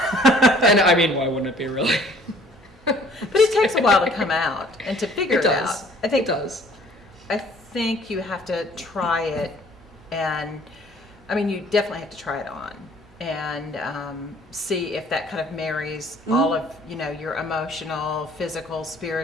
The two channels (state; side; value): normal; both; correlation 0.55